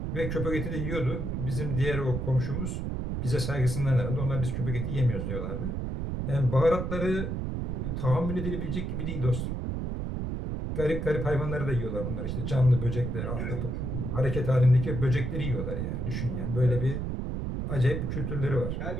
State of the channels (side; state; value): right; noise; rumble, 2 dB below the sound